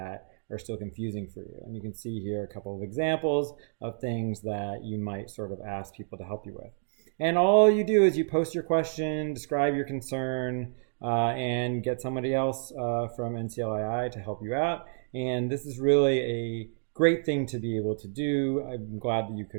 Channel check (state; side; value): silent; left; digital silence